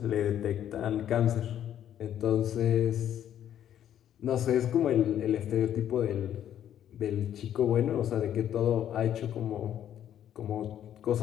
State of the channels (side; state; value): right; quieter; 10.5 dB